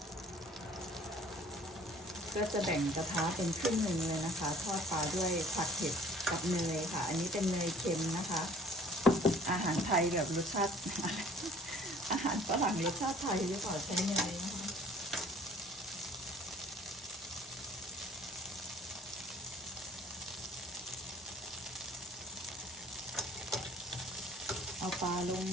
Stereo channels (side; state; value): both; normal; correlation 0.52